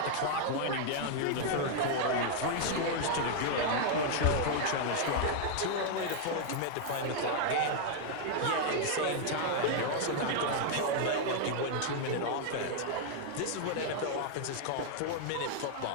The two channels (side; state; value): both; different; correlation 0.00